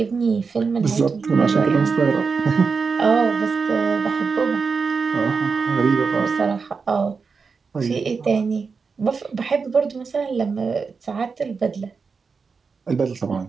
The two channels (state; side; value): quieter; left; 5.1 dB